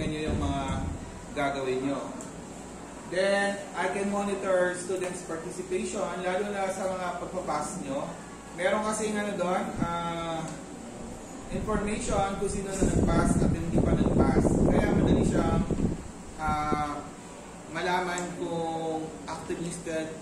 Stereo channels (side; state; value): both; identical; correlation 1.00